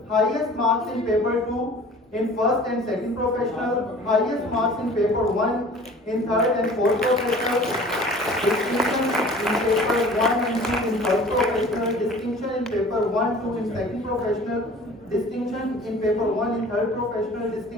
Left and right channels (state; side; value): normal; both; correlation 0.45